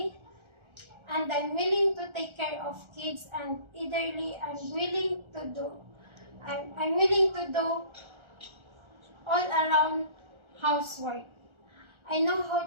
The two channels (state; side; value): late; left; 1.4 ms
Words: and I'm willing to take care of kids and eitherly I'm willing to do all around housework. I know